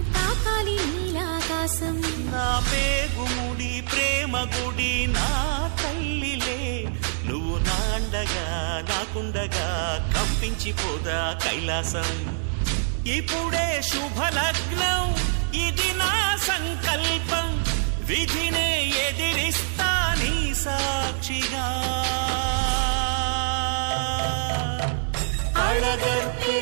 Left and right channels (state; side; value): silent; left; digital silence